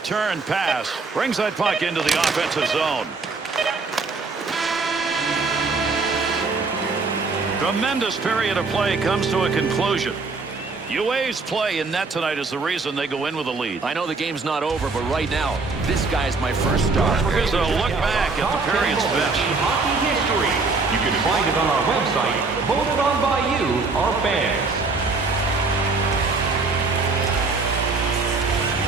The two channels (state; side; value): quieter; left; 4.0 dB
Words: pass. Brings that puck into the offensive zone. Tremendous period of play comes to a conclusion. UA's play in net tonight is the reason they go in with a lead. I know the game's not over, but right now, this guy's my first star. Here's a look back at the period's best. Hockey history. You can find it on our website, voted on by you, our fans.